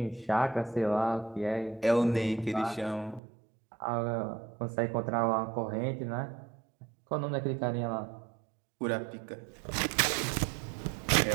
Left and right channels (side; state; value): left; drops out; at 3.2 s